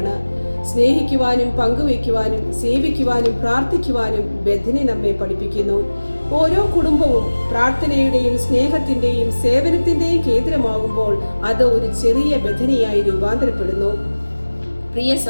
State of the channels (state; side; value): inverted; both; correlation -1.00